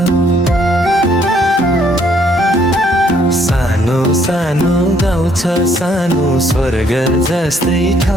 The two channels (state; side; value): normal; both; correlation 0.66